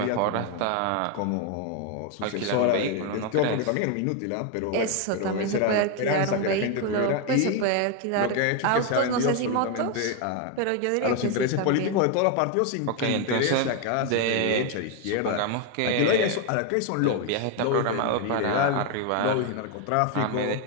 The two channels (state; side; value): different; both; correlation 0.01